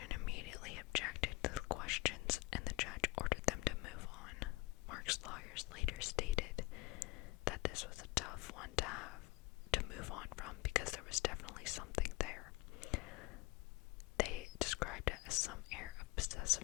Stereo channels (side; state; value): right; quieter; 22.0 dB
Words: immediately objected to the questions, and the judge ordered them to move on. Mark's lawyers later stated that this was a tough one to move on from because there was definitely something there. They described it as some air of